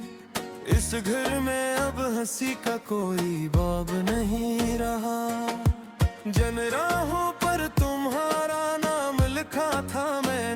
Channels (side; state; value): both; identical; correlation 1.00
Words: इस घर में अब हंसी का कोई बाब नहीं रहा। जन राहों पर तुम्हारा नाम लिखा था